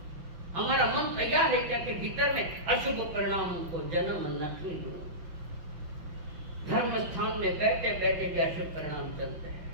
हमारा मन तैयार है क्या कि भीतर में अशुभ परिणामों को जन्म नहीं दो। धर्म स्थान में बैठे बैठे भी अशुभ परिणाम चलते हैं,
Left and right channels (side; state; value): left; late; 5.9 ms